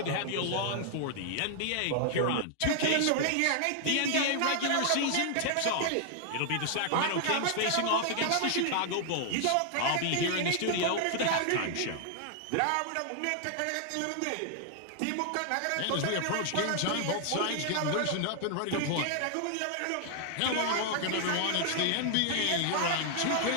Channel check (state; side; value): different; both; correlation 0.00